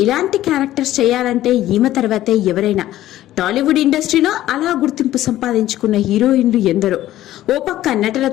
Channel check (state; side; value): quieter; right; 14.1 dB